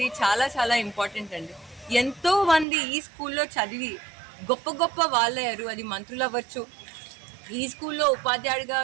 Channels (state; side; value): drops out; left; at 2.7 s